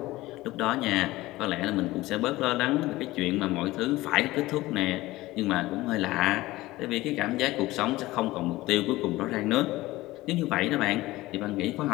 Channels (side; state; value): right; quieter; 18.4 dB